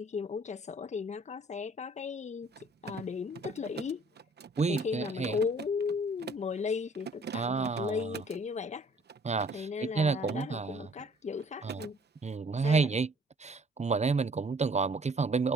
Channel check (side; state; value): both; normal; correlation 0.56